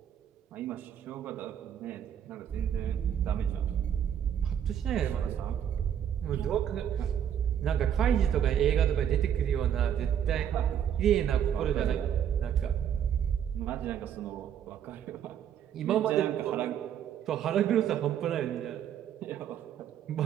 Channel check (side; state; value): left; quieter; 9.3 dB